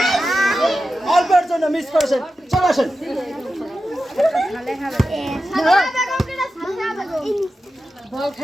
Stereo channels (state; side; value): normal; both; correlation 0.91